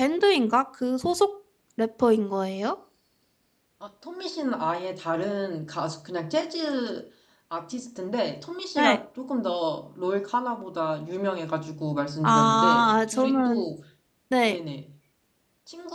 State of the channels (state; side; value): identical; both; correlation 1.00